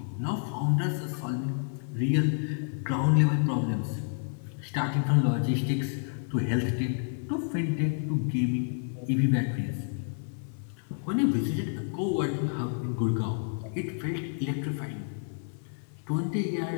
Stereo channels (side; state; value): right; silent; 58 dB below the other